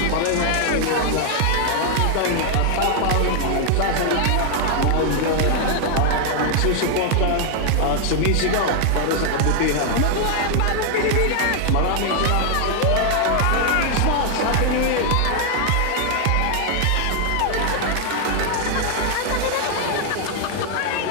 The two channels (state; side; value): different; both; correlation 0.00